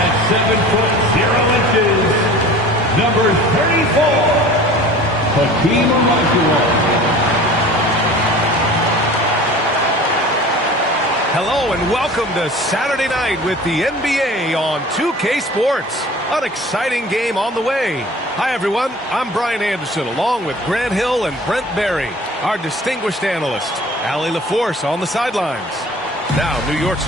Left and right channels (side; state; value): both; normal; correlation 0.43